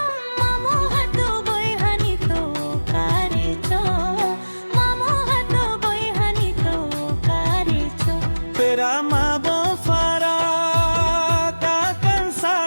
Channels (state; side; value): inverted; both; correlation -1.00